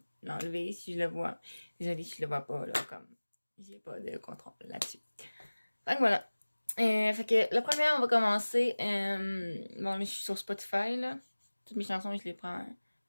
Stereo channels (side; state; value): both; inverted; correlation -1.00